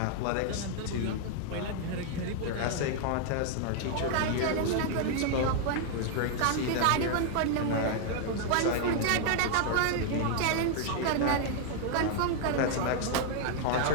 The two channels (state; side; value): different; both; correlation 0.00